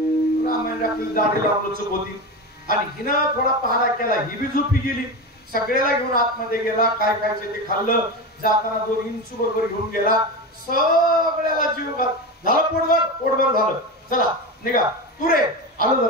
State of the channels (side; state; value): both; normal; correlation 0.22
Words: रामायण रात्री दाढी लावलं चूक होती. आणि हिनं थोडा पहारा केला, ही बी झोपी गेली. सगळ्याला घेऊन आतमध्ये गेला, काय खायचं ते खाल्लं. जाताना 2 इंच बरोबर घेऊन गेला. सगळ्याला जीव घात झालं, पोटभर झालं. चला निघा, तू रे आलो